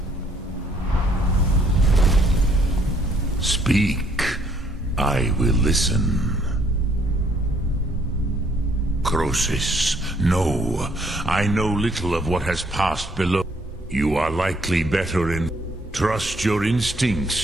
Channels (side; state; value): both; normal; correlation 0.66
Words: Speak. I will listen. Croesus, no. I know little of what has passed below. You are likely better in... Trust your